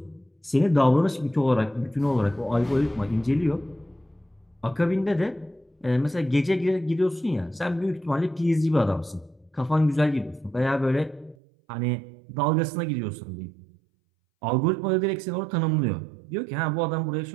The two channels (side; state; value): left; drops out; at 11.4 s